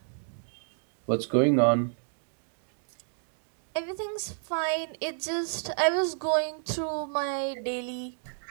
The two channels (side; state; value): left; silent; digital silence